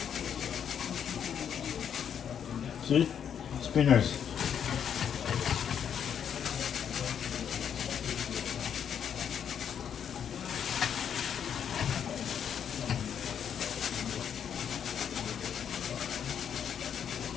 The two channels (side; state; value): right; quieter; 8.3 dB